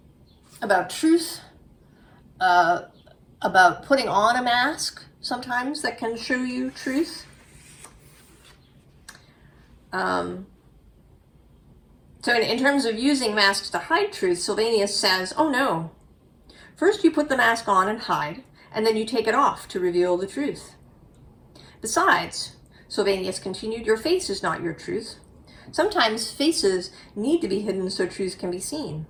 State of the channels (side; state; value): both; identical; correlation 1.00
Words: about truth, about putting on a mask sometimes that can show you truth. So in terms of using masks to hide truth, Sylvanus says, oh no, first you put the mask on and hide, and then you take it off to reveal the truth. Besides, Sylvanus continued, your face is not your truth. Sometimes faces need to be hidden so truth can be seen.